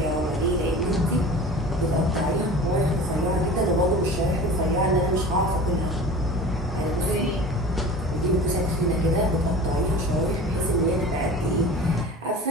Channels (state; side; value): normal; both; correlation 0.38